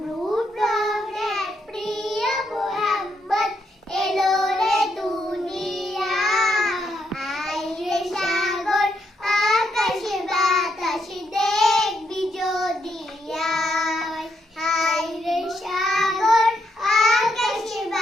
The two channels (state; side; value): normal; both; correlation 0.78